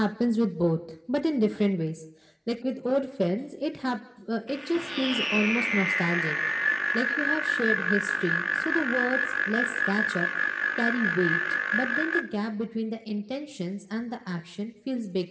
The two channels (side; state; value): both; identical; correlation 1.00